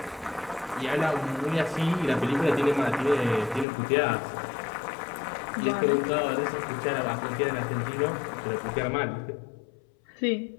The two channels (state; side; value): drops out; right; at 3.7 s